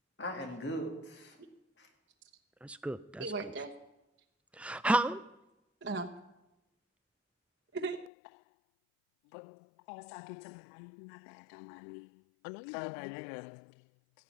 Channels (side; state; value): right; drops out; at 8.1 s